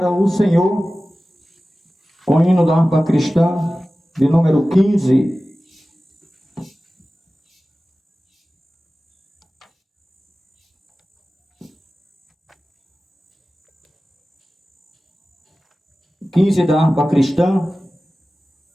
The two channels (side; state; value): both; normal; correlation 0.96